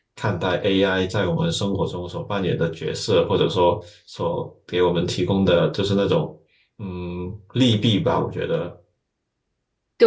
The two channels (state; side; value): identical; both; correlation 1.00